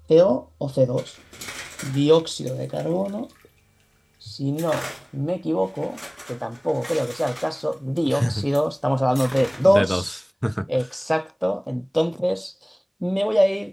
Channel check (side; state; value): both; identical; correlation 1.00